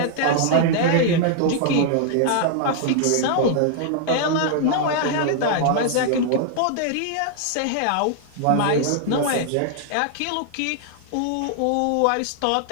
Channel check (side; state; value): both; different; correlation -0.01